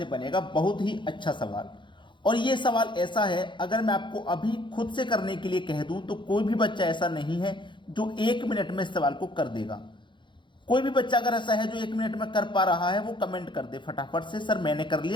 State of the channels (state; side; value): late; right; 0.23 ms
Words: बनेगा। बहुत ही अच्छा सवाल। और ये सवाल ऐसा है, अगर मैं आपको अभी खुद से करने के लिए कह दूं तो कोई भी बच्चा ऐसा नहीं है जो 1 मिनट में इस सवाल को कर देगा। कोई भी बच्चा अगर ऐसा है जो 1 मिनट में कर पा रहा है, वो कमेंट कर दे फटाफट से, सर मैंने कर